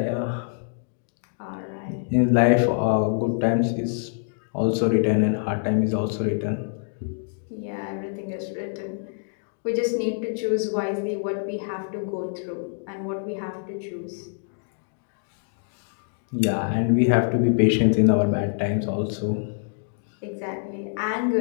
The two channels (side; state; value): right; silent; digital silence